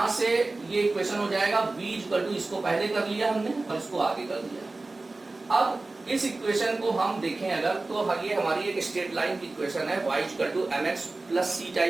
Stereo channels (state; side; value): quieter; left; 3.2 dB